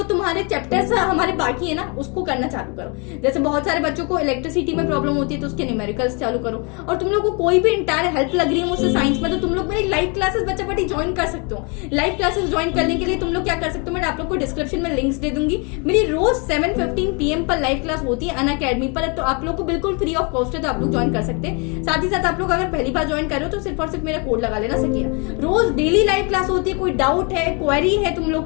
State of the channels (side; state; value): right; quieter; 33.2 dB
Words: तुम्हारे चैप्टर्स हमारे बाकी है ना उसको करना चालू करो। जैसे बहुत सारे बच्चों को इलेक्ट्रिसिटी में प्रॉब्लम होती है तो उसके न्यूमेरिकल्स चालू करो। और तुम लोग को कोई भी इंटायर हेल्प लग रही है मुझसे साइंस में, तो तुम लोग मेरी लाइव क्लासेस बच्चा पार्टी ज्वाइन कर सकते हो। लाइव क्लासेस ज्वाइन करने के लिए तुम लोग क्या कर सकते हो, मैं आप लोग को डिस्क्रिप्शन में लिंक्स दे दूंगी। मेरी रोज 7:15 PM पर लाइव क्लास होती है अनअकैडमी पर, तो आप लोग को बिल्कुल फ्री ऑफ कॉस्ट है, तो आप लोग ज्वाइन कर सकते हैं। साथ ही साथ आप लोग अगर पहली बार ज्वाइन कर रहे हो तो सिर्फ और सिर्फ मेरा कोड लगा लेना सकिया। रोज डेली लाइव क्लास होती है, कोई डाउट है, क्वेरी है तुम